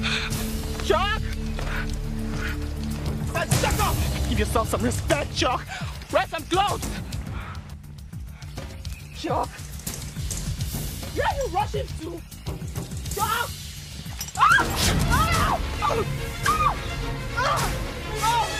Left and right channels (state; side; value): identical; both; correlation 1.00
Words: Chuck! Shut up! Give yourself some respect, Chuck! Wear some clothes! Chuck! Where are you rushing to? Chuck!